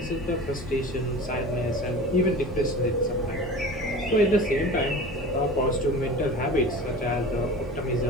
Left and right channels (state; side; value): normal; both; correlation 0.36